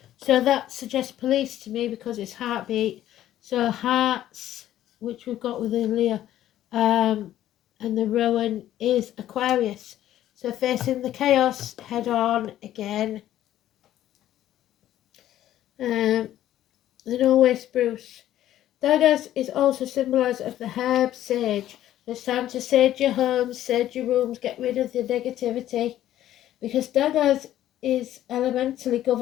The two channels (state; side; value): quieter; right; 12.7 dB